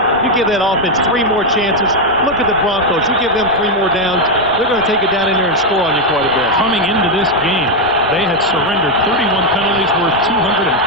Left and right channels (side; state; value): right; noise; rumble, 22 dB below the sound